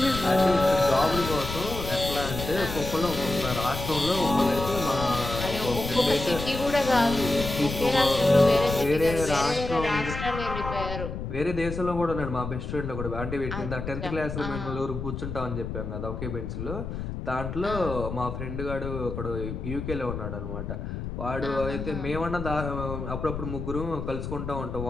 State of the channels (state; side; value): noise; left; rumble, 6 dB below the sound